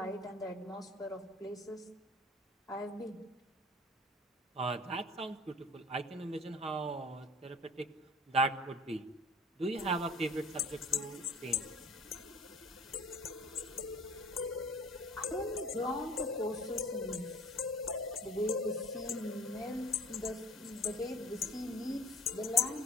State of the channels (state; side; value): normal; both; correlation 0.46